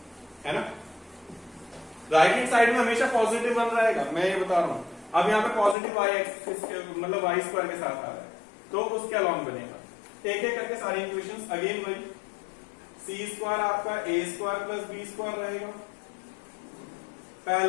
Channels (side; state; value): right; drops out; at 5.8 s